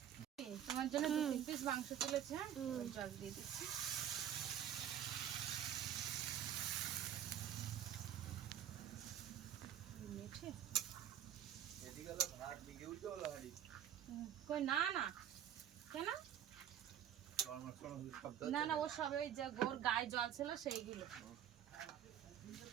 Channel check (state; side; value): quieter; left; 10.1 dB